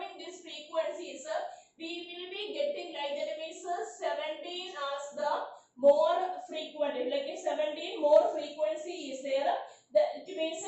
these frequencies, we will be getting like that means 17 as the more frequent, like 17 more frequency is there. That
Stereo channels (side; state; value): both; identical; correlation 1.00